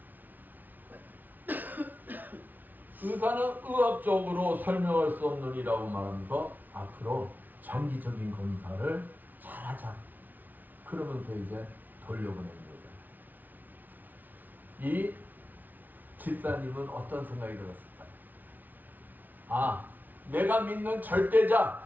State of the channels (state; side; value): late; left; 0.083 ms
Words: 의사는 의학적으로 설명할 수 없느니라고 말하면서 앞으로 정기적인 검사를 잘하자. 그러면서 이제 돌려보냅니다. 이 집사님은 어떤 생각이 들었을까요? 아, 내가 믿는 절대자